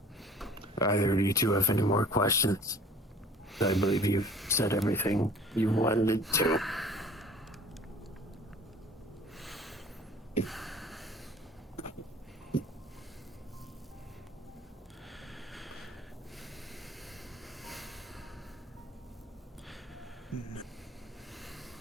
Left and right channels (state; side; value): normal; both; correlation 0.48